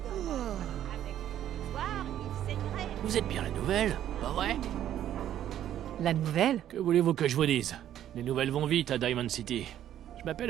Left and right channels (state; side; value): quieter; left; 11.3 dB